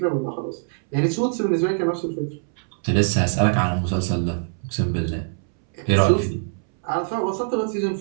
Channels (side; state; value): left; silent; 63 dB below the other